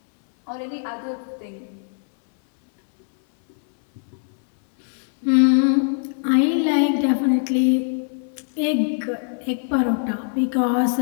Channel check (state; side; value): silent; right; 64 dB below the other